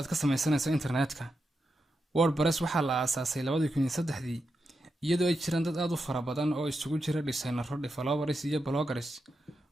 ka samaysanayso internetka. WordPress waxaa la aasaasay 2003 iyadoo ay jiraan dad aad u fara badan oo isugu jira designers, developers iyo bloggers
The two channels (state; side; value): normal; both; correlation 0.86